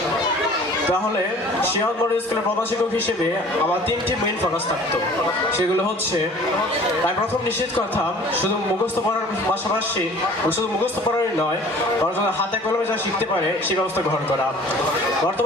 তাহলে শিরোনাম মডেল স্কুলের প্রধান শিক্ষক হিসেবে আমার 3টি মেইন ফোকাস থাকতো। সেগুলো হচ্ছে, আমি প্রথম নিশ্চিত করতাম শুধু মুখস্থ পড়ার পাশাপাশি শুধু মুখস্থ পড়ারই নয়, বরং হাতে কলমে যা শিখতে পারে সেই ব্যবস্থা গ্রহণ করা।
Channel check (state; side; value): normal; both; correlation 0.48